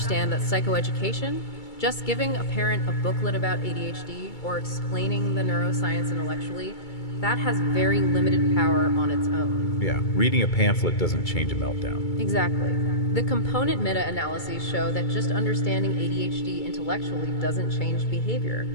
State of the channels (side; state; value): right; late; 2.3 ms